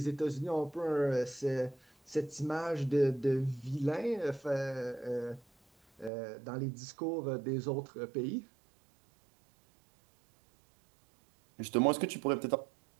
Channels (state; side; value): drops out; left; at 6.1 s